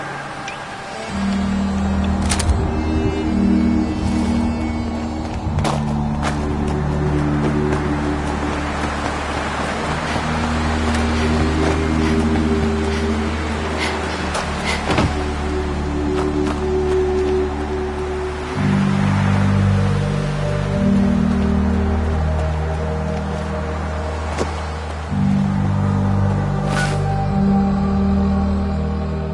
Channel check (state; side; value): identical; both; correlation 1.00